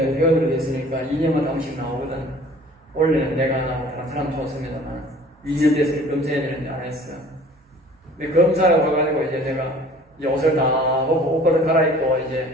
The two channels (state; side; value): normal; both; correlation 0.49